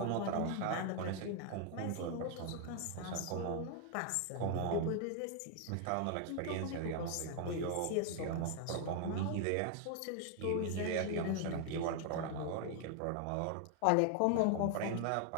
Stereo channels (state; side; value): different; both; correlation 0.00